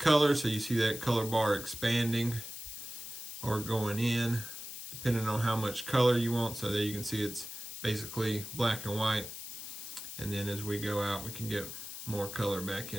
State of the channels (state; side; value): noise; left; hiss, 9 dB below the sound